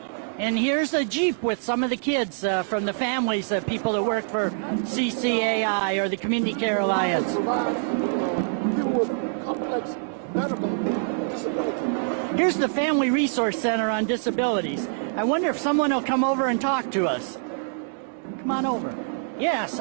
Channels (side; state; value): left; silent; digital silence